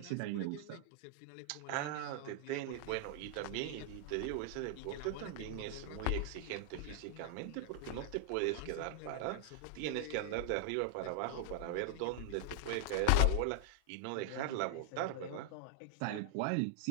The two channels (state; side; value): different; both; correlation 0.00